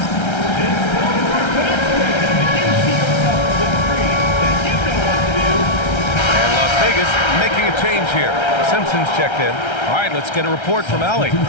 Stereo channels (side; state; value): right; late; 1.3 ms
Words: Making a change here. Simpson's checked in. All right, let's get a report from Allie.